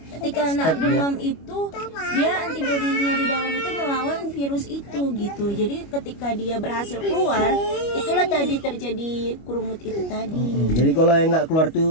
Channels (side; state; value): right; late; 25 ms